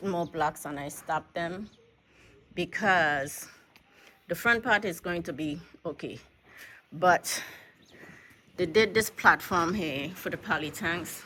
more blocks, and I stopped them because the front part is going to be okay, but they did this platform here for the poly tanks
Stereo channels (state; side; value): identical; both; correlation 1.00